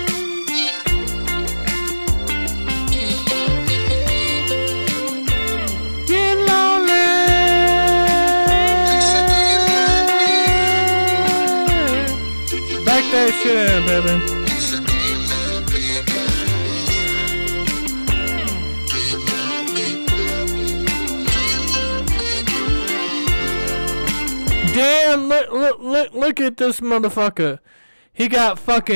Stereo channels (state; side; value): inverted; both; correlation -1.00